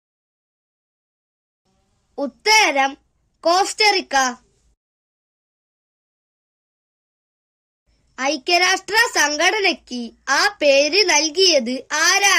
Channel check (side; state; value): both; identical; correlation 1.00